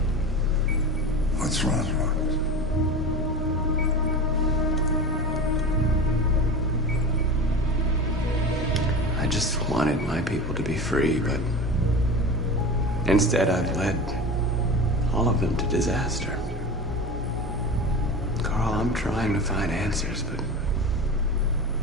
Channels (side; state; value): both; normal; correlation 0.29